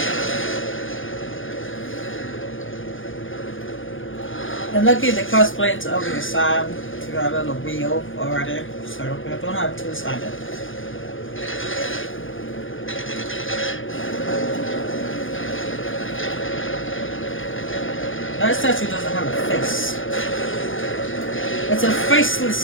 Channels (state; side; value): late; right; 0.58 ms